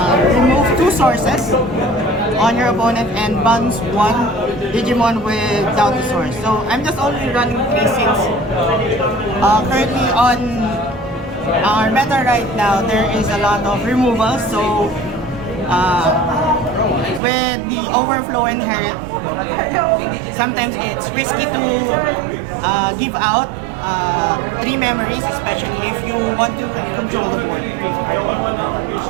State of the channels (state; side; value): drops out; left; at 17.2 s